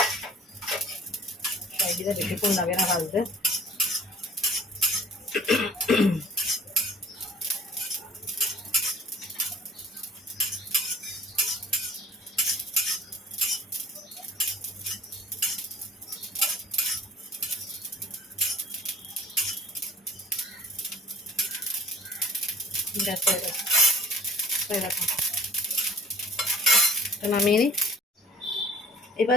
শাহি জিরা বেশিক্ষণ লাগে না ভাজতে। গ্যাস হয়ে গেছে, হয়ে গেছে, নামিয়ে নিই।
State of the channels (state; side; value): normal; both; correlation 0.48